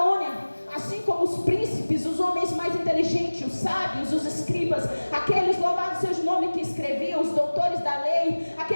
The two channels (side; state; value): both; inverted; correlation -1.00